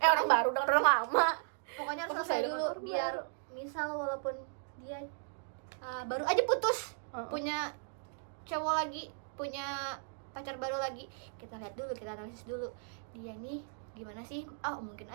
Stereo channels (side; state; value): left; silent; digital silence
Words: baru dengan orang lama. Pokoknya harus Harus selesai selesai dulu, dengan orang biar misal walaupun dia baru aja putus, punya cowok lagi, punya pacar baru lagi, kita lihat dulu, kita analisis dulu dia nih gimana sih. Mungkin